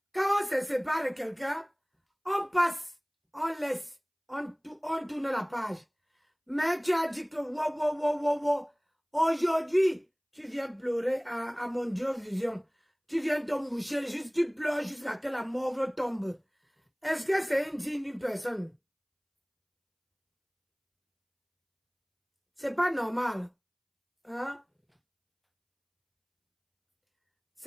Quand on se sépare de quelqu'un, on passe, on laisse, on tourne la page. Mais tu as dit que wow. Aujourd'hui, tu viens pleurer à mon Dieu vision. Tu viens te moucher, juste tu pleures jusqu'à ce que la mort tombe. Est-ce que c'est une digne personne? C'est pas normal. Hein?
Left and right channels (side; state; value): both; identical; correlation 1.00